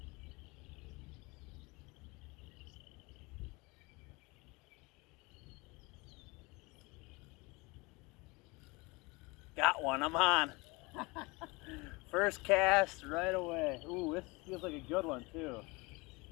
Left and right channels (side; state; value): right; quieter; 25.5 dB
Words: Got one, I'm on. First cast right away. Ooh, this feels like a good one too.